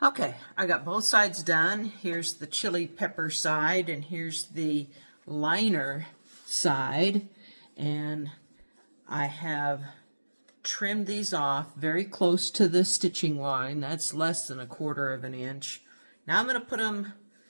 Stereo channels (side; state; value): both; inverted; correlation -1.00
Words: Okay, I got both sides done. Here's the chili pepper side and here's the liner side. And I have trimmed these off very close to the stitching line. That's less than 1/4 of an inch. Now I'm going to put them